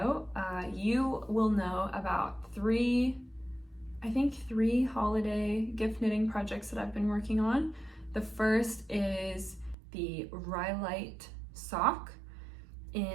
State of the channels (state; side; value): drops out; left; at 9.8 s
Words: you will know about three holiday gift knitting projects that I've been working on. The first is the Rhyolite sock